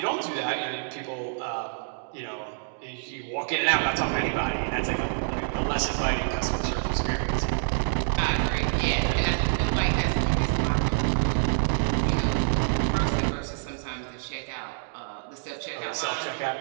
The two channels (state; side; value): silent; left; digital silence